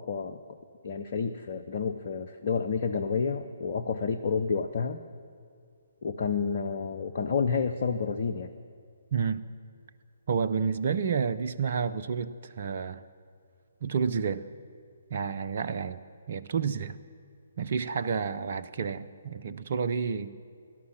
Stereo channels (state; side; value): inverted; both; correlation -0.64